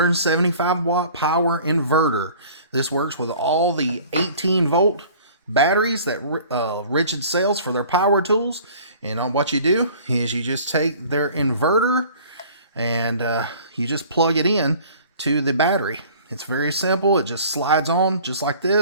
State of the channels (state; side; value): inverted; both; correlation -0.48